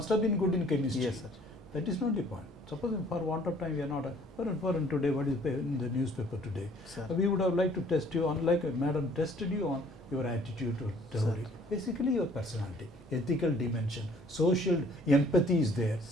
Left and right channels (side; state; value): both; normal; correlation 0.57